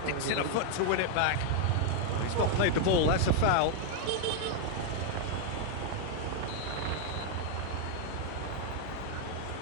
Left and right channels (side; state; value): both; different; correlation 0.00